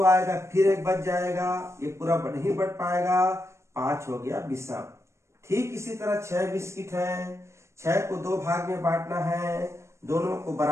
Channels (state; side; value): late; left; 0.13 ms